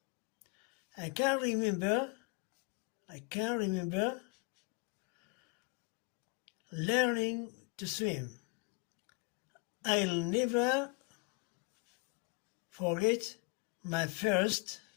I can remember learning to swim. I'll never forget my first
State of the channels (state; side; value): quieter; right; 30.1 dB